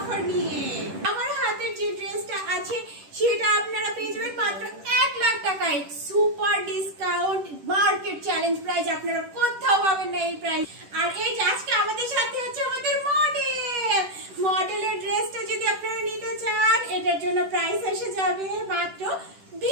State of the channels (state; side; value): late; left; 10 ms